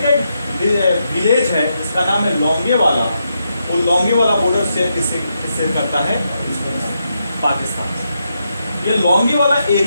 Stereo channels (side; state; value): both; inverted; correlation -0.82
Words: का एक विलेज है जिसका नाम है लोंगेवाला, वो लॉन्गे वाला बॉर्डर शेयर किससे करता है? पाकिस्तान से। ये लॉन्गे वाला